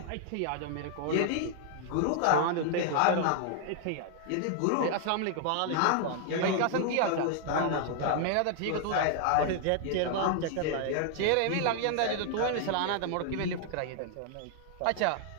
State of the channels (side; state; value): both; different; correlation 0.00